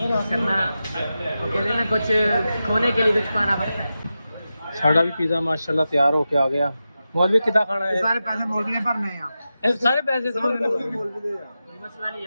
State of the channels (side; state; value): both; inverted; correlation -0.92